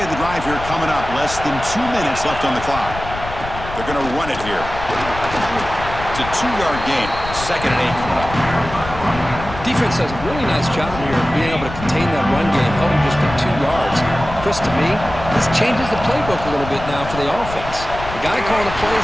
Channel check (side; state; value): left; noise; rumble, 10 dB below the sound